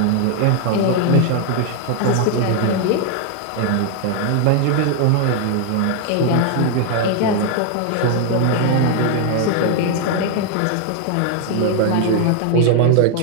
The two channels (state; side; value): different; both; correlation 0.00